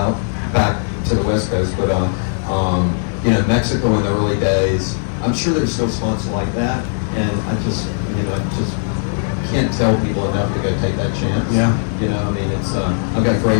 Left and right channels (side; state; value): right; silent; digital silence